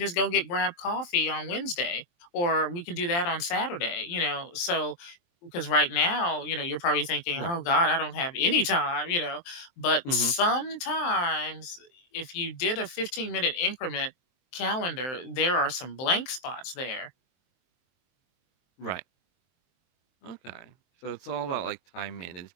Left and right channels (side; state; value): right; late; 23 ms